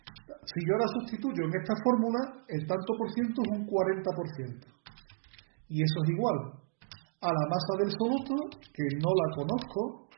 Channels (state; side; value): silent; left; digital silence